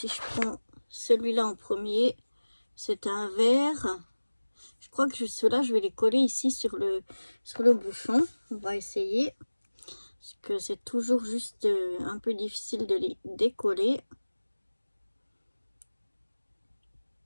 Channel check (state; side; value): inverted; both; correlation -1.00